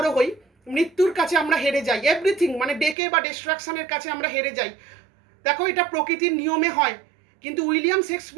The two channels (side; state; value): left; drops out; at 3.0 s